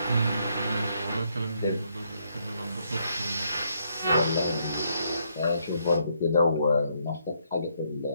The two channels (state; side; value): inverted; both; correlation -0.74